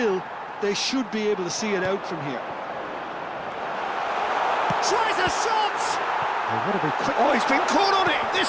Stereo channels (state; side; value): identical; both; correlation 1.00